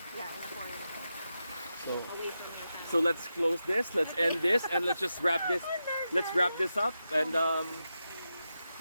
in a foreign country, so away from your family. so let's close this. Let's end this, and let's just wrap this. Let's wrap this up. And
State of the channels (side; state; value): both; inverted; correlation -0.89